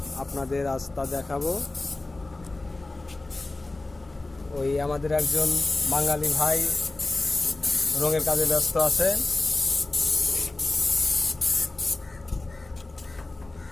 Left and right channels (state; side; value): quieter; right; 3.0 dB